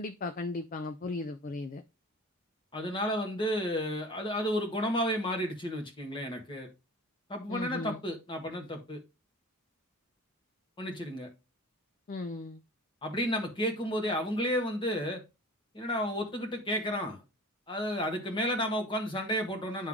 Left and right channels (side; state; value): both; normal; correlation 0.40